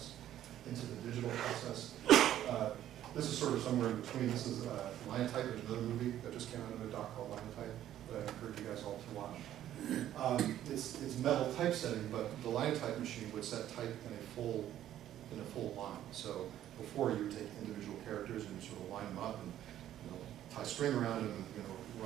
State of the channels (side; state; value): left; quieter; 12.0 dB